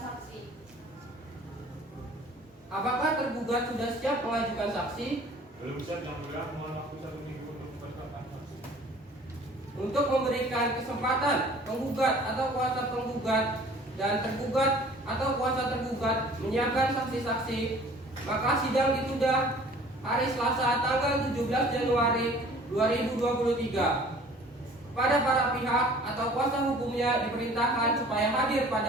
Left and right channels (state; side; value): normal; both; correlation 0.50